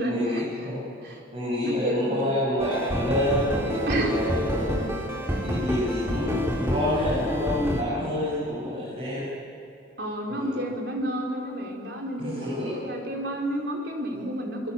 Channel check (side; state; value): both; normal; correlation 0.47